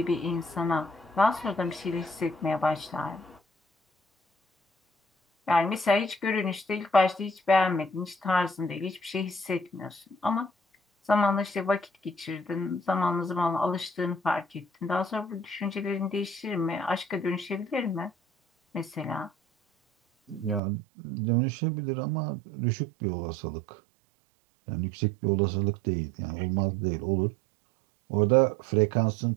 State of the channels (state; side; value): drops out; left; at 20.6 s